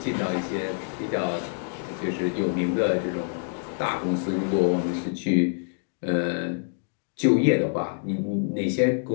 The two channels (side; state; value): right; silent; digital silence